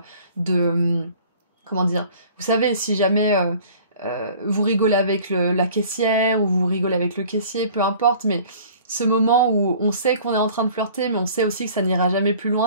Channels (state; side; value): inverted; both; correlation -0.49